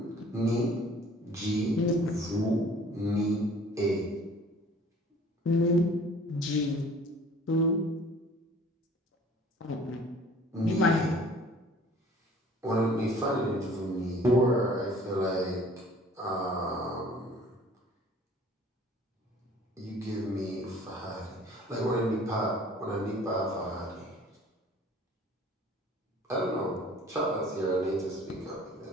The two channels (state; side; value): normal; both; correlation 0.51